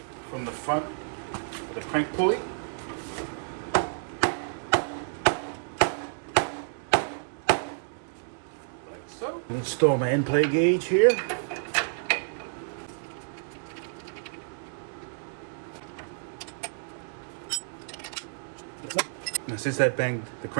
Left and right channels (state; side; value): silent; left; digital silence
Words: from the front with a crank pulley. Like so. Install my end plate gauge here. Now, since I banged the